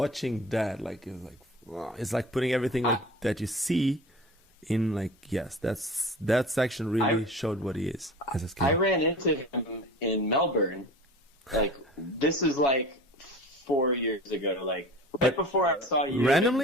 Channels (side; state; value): both; normal; correlation 0.38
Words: that, like it was like, wow, it's like putting everything like that you see in like that section really showed what he is as a skater. I ran into him in Melbourne. Like this is like 4 years ago. Like right before I saw you.